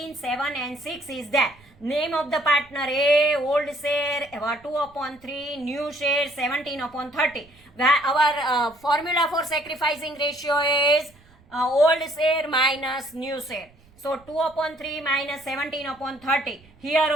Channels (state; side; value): noise; right; rumble, 28 dB below the sound